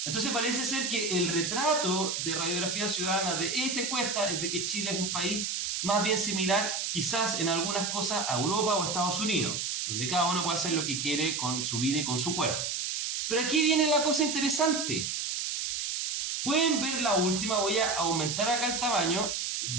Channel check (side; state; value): right; noise; hiss, 2 dB below the sound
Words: Entonces parece ser que el retrato de Radiografía Ciudadana de esta encuesta es de que Chile es un país más bien similar quizás en algunas cosas a Europa o a Estados Unidos, donde cada uno puede hacer lo que quiere con su vida y con su cuerpo. Pero aquí viene la cosa interesante. Pueden ver la última, voy a aumentar acá el tamaño